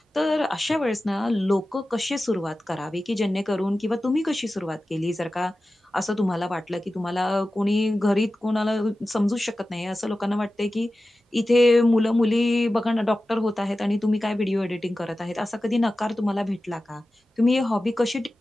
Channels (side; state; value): both; normal; correlation 0.94